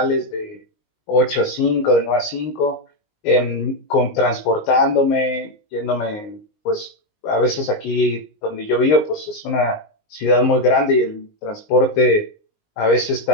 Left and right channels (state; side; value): late; right; 19 ms